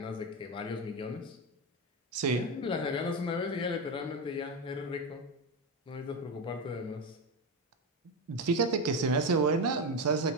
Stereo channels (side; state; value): both; normal; correlation 0.13